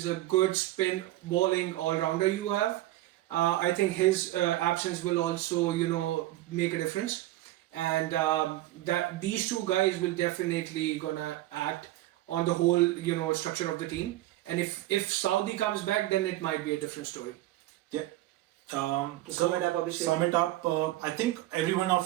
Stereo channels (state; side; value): quieter; left; 16.2 dB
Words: a good spin bowling all-rounder you have. I think his absence will also, make a difference. And that these two guys will definitely gonna act on the whole, structure of the team. And if Saudi comes back, then it might be a different story. Yeah. Sum it up, Abhishek. Sum it up. I think every one